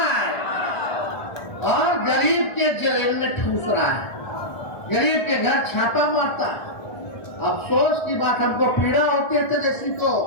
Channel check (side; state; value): right; late; 1.5 ms